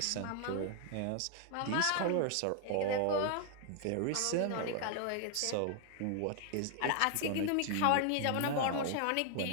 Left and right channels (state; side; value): different; both; correlation 0.00